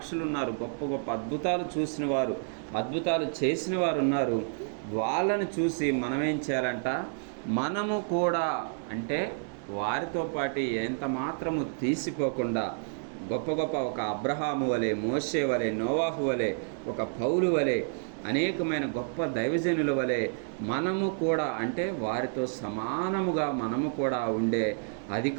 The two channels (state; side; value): silent; left; digital silence